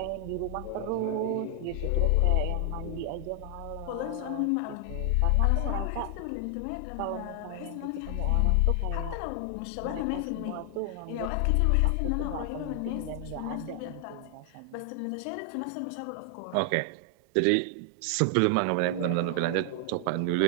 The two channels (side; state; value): both; different; correlation 0.00